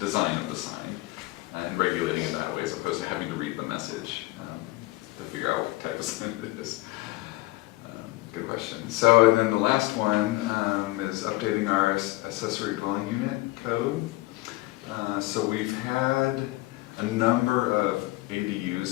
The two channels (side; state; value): right; quieter; 19.9 dB